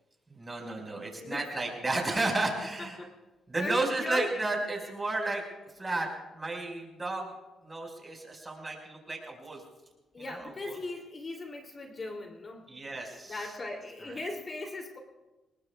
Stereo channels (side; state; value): both; normal; correlation 0.89